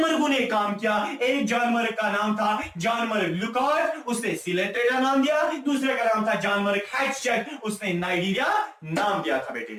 ने काम किया। एक जानवर का नाम था जानवर ल्यूकॉट, उसने सीलेंट्रेटा नाम दिया। दूसरे का नाम था जानवर हैट्सचेक, उसने नाइडीरिया नाम दिया था बेटे,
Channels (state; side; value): identical; both; correlation 1.00